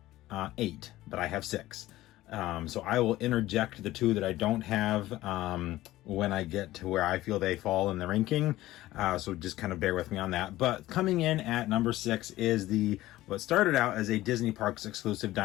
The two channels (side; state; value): right; quieter; 16.2 dB